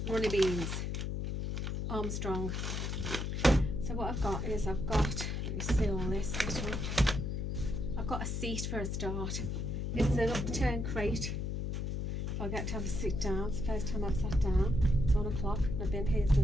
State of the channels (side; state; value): left; noise; hum, 2 dB below the sound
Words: runny beans, Armstrong. So what I've got is let me see all this little, I've got a seat for a start. It's an upturned crate. If I get to have a sit down, it's the first time I've sat down. It's 1 o'clock and I've been here